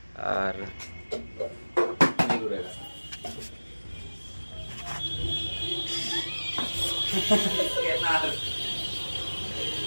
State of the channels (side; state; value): both; inverted; correlation -1.00